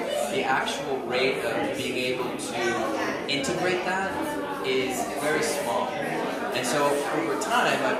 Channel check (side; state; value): both; identical; correlation 1.00